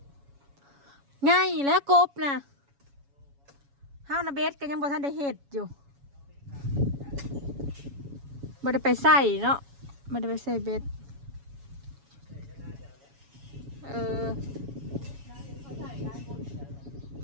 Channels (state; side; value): late; left; 7.2 ms